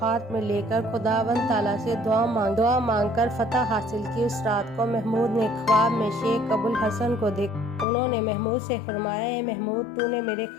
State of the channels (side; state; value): right; drops out; at 7.9 s